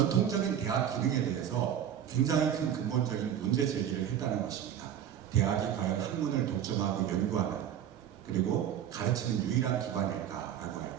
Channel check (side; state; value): left; quieter; 9.7 dB